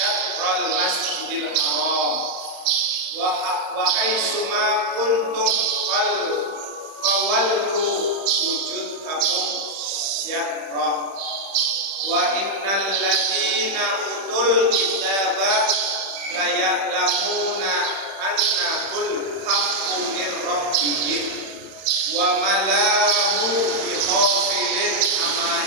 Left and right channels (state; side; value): late; left; 31 ms